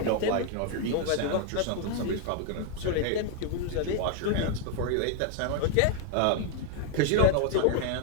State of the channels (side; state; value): both; different; correlation 0.00